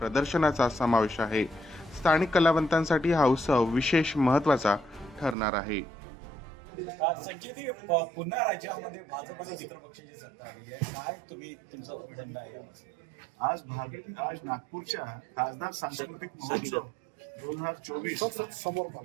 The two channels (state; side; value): drops out; left; at 5.4 s